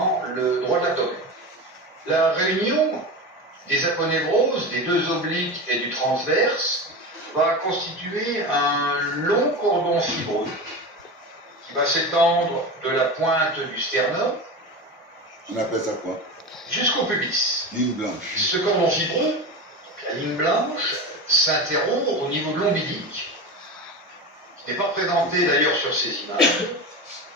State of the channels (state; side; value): normal; both; correlation 0.25